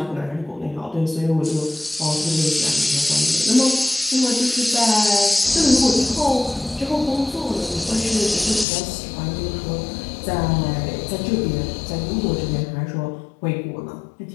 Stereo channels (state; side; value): drops out; right; at 8.7 s